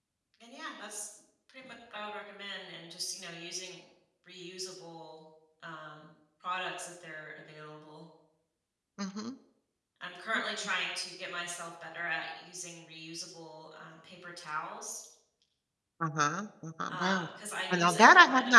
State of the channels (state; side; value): identical; both; correlation 1.00